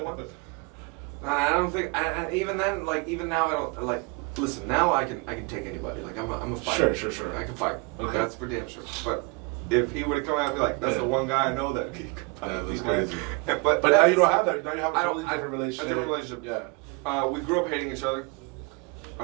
I don't think. Even then, like even now, I don't like. Listen, now I can take anybody. Like I'm a fighter. Sure. I can fight. Okay. That's for damn sure. But if he would have come at me like that's the one guy I know that he could fight. Yeah, that's crazy. But now you don't have that. Now you have a totally different relationship. A different relationship. Yeah. We grew up hating each other.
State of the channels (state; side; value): quieter; left; 29.5 dB